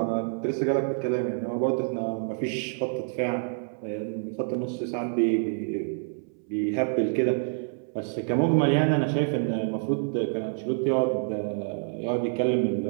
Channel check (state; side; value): silent; left; 60 dB below the other